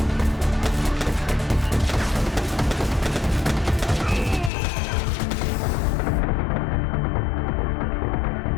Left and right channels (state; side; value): drops out; right; at 4.5 s